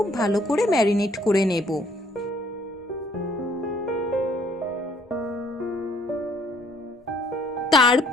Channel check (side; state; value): both; normal; correlation 0.62